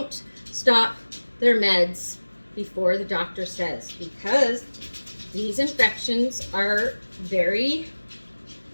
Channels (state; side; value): inverted; both; correlation -1.00